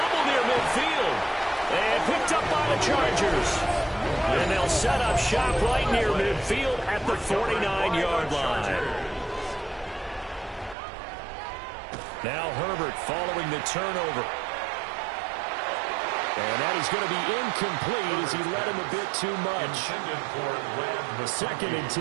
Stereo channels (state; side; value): drops out; left; at 10.8 s